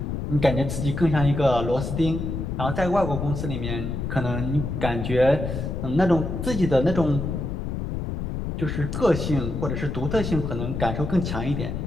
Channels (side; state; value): left; noise; rumble, 4 dB below the sound